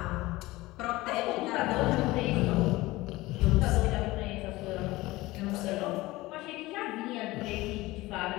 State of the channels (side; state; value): right; quieter; 19.4 dB